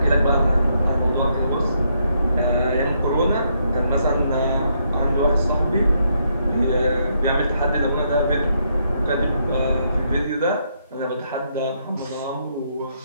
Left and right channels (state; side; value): inverted; both; correlation -0.75